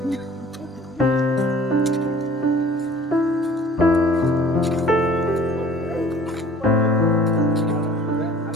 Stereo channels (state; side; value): normal; both; correlation 0.49